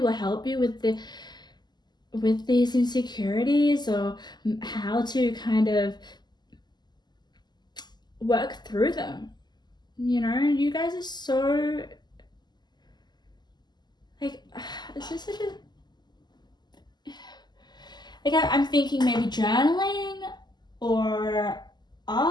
help you with these insecurities, or how to kind of work through them. You know, you guys are so like, it's just such a, like I'm thinking maybe journaling or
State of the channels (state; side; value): late; right; 0.21 ms